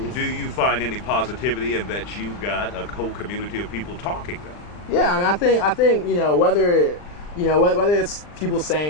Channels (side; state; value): right; late; 39 ms